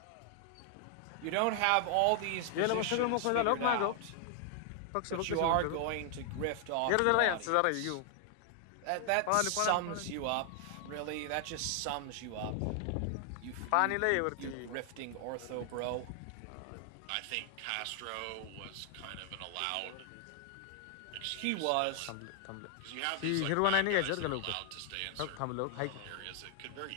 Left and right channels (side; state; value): both; different; correlation 0.00